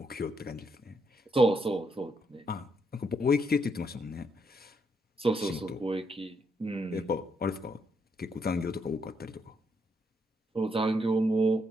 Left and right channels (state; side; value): normal; both; correlation 0.77